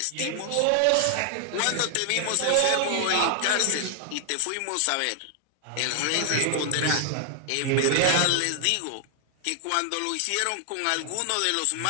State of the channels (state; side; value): different; both; correlation 0.00